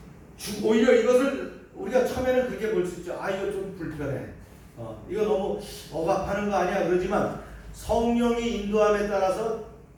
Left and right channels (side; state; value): both; identical; correlation 1.00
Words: 오히려 이것을 우리가 처음에는 그렇게 볼 수 있죠. 이거 좀 불편해. 이거 너무 억압하는 거 아니야? 그러지만 성령이 인도함에 따라서